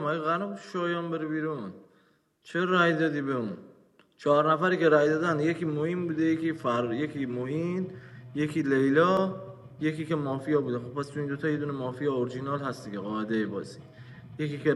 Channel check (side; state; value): both; identical; correlation 1.00